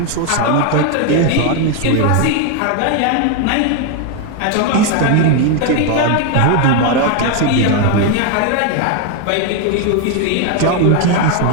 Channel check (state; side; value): different; both; correlation 0.01